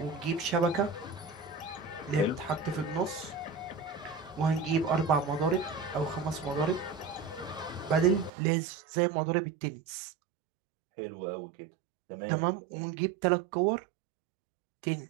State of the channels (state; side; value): drops out; left; at 8.3 s